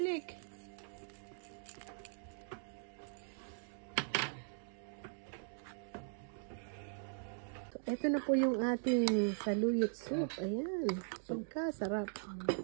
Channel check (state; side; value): silent; left; digital silence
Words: Ito na po yung ating saluyot soup. Ayan. Pagkasarap.